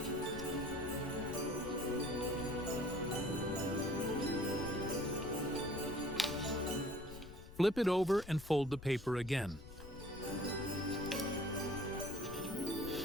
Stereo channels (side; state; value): left; noise; rumble, 14 dB below the sound